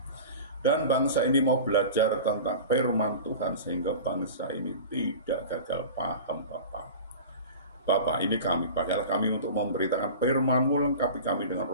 Dan bangsa ini mau belajar tentang firman Tuhan sehingga bangsa ini tidak gagal paham Bapak. Bapak, ini kami, pakailah kami untuk memberitakan firman-Mu, lengkapi kami dengan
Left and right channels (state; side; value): inverted; both; correlation -0.35